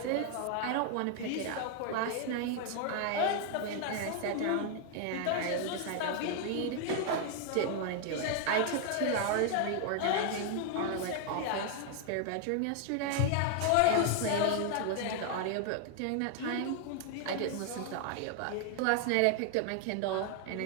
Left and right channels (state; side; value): different; both; correlation 0.00